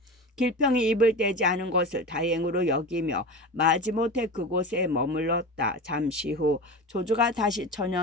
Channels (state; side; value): normal; both; correlation 0.29